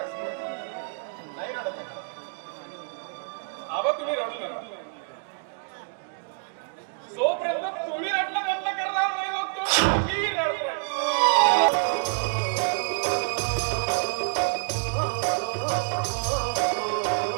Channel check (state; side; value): silent; left; digital silence